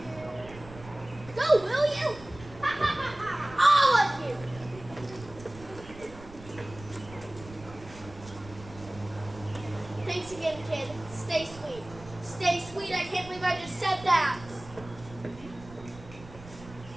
Go, will you? All of you! Thanks again, kid. Stay sweet. Stay sweet. I can't believe I just said that.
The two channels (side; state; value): right; noise; rumble, 17 dB below the sound